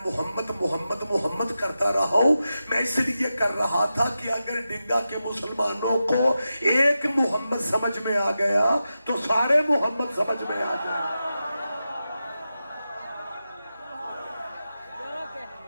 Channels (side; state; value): both; inverted; correlation -0.91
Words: محمد محمد محمد کرتا رہا ہوں. میں اس لیے کر رہا تھا کہ اگر ڈنگا کے مسلمانوں کو ایک محمد سمجھ میں آ گیا تو سارے محمد سمجھ میں آ جائیں.